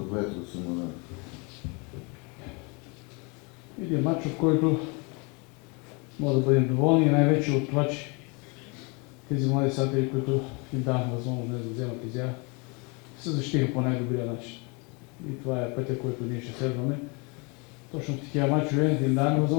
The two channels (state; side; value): quieter; right; 31.0 dB